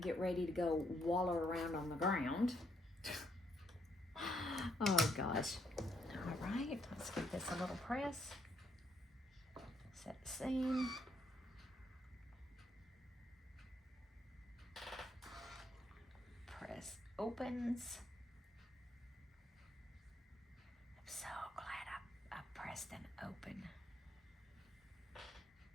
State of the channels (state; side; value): normal; both; correlation 0.74